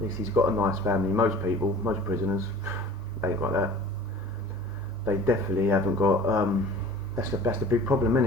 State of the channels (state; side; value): normal; both; correlation 0.44